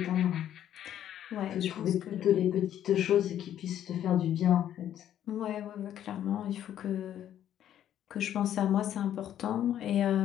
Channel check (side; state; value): right; quieter; 10.9 dB